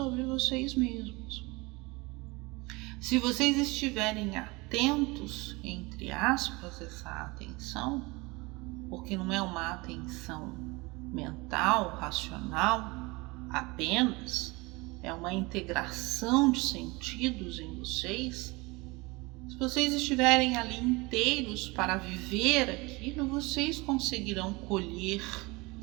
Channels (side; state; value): left; quieter; 24.5 dB